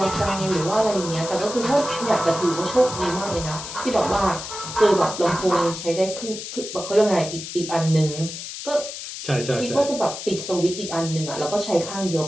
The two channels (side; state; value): left; noise; hiss, 9 dB below the sound